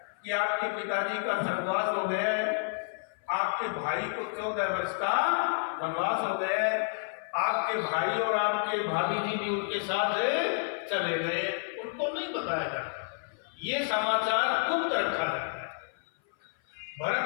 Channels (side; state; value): right; silent; 55 dB below the other